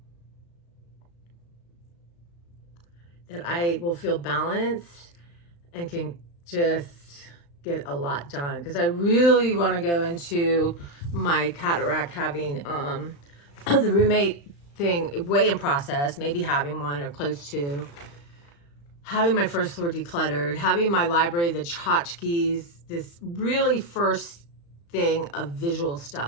That I will feel balanced and can just get a lot done. Because I really want to go into my cataract having the roommate thing way in process, maybe having one or close to. Having my first floor decluttered, having my library, the tchotchkes, this really first thing of visual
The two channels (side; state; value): right; late; 35 ms